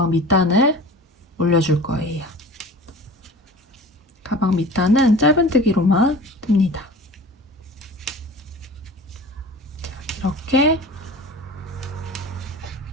밑단을 올려줄 거예요. 가방 밑단은 짧은뜨기로만 뜹니다. 자, 이렇게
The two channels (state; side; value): normal; both; correlation 0.39